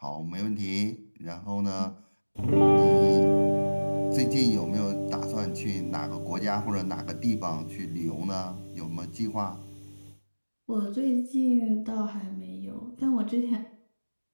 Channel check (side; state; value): both; inverted; correlation -1.00